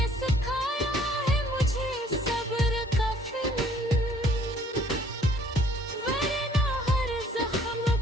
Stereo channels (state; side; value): normal; both; correlation 0.58